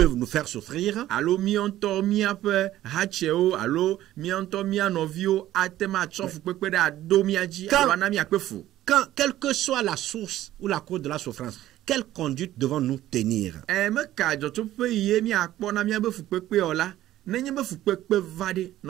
nous faire souffrir, alo mianto mia pe hacheo alo mianto mia novio atema tsofu pepe da do miaji Quand- alo na mia pefu. quand, quelle que soit la source ou la cause de la souffrance, quelle conduite devons-nous tenir? Me ka joto pe ye mi akpo na mia befu pepe ola nenye befu pepe vade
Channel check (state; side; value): quieter; left; 13.9 dB